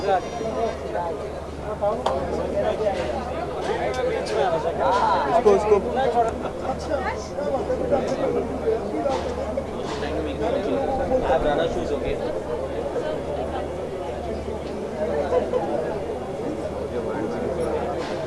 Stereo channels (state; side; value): identical; both; correlation 1.00